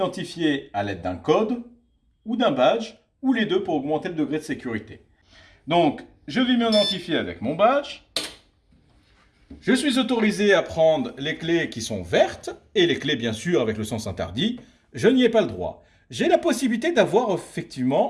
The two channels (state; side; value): identical; both; correlation 1.00